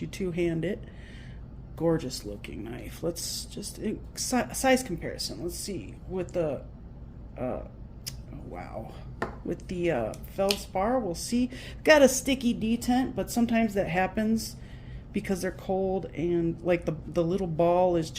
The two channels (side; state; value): both; identical; correlation 1.00